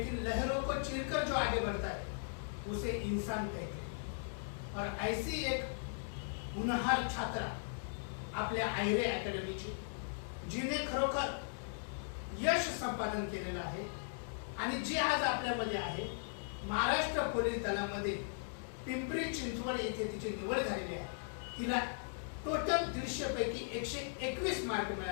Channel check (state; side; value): silent; right; digital silence